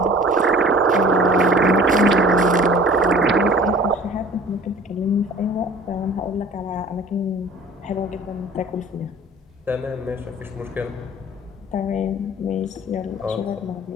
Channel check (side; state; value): both; normal; correlation 0.47